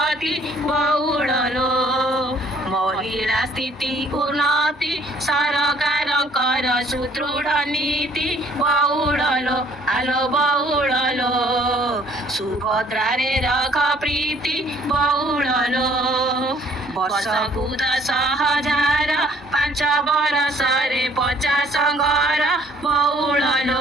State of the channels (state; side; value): normal; both; correlation 0.59